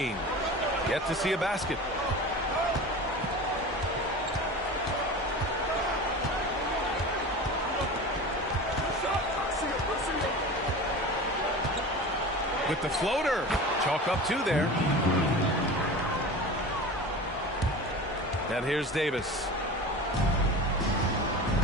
Yet to see a basket. With the floater. Chalk up two there. And here's Davis.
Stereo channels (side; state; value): both; normal; correlation 0.33